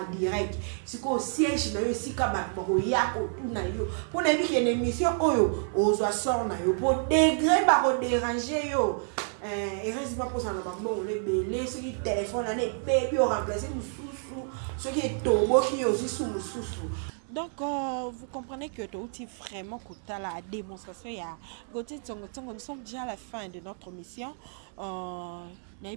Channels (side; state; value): left; silent; 58 dB below the other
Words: direct siko siège na yo sika ba ya ko tout na yo pour na bi une émission oyo ozwa sort na yo pour degré ba ko déranger yo et reste pas pour ça na ba bon le belé ce qui téléphone na baby au remplacer ce qui est tobo qui aussi sous mususu. Donc vous comprenez que tu outil vraiment coûta la démonstration il y a Gauthier Tsongo. Nous sommes déjà à la fin de notre mission.